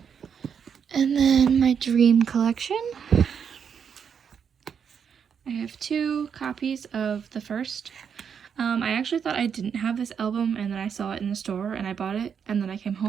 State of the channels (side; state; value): left; quieter; 7.2 dB